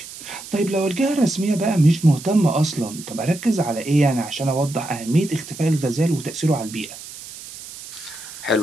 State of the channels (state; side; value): noise; right; hiss, 14 dB below the sound